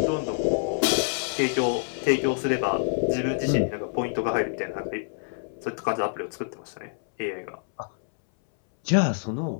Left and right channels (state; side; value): silent; right; 61 dB below the other